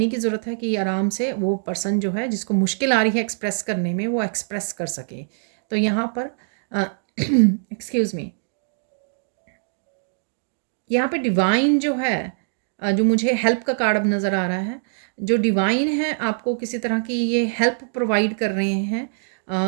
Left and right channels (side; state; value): left; silent; digital silence